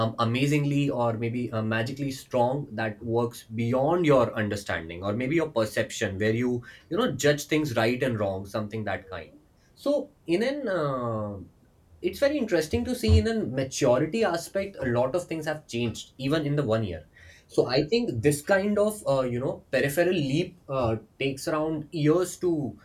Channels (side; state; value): both; identical; correlation 1.00